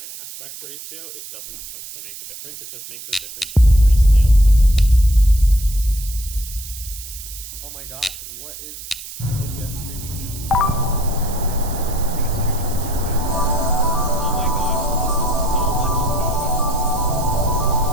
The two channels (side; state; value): right; noise; hiss, 13 dB below the sound